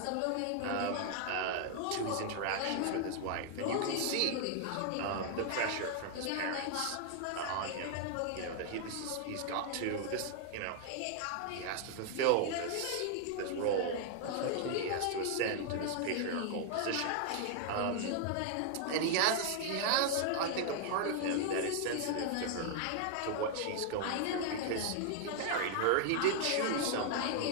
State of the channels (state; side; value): different; both; correlation 0.00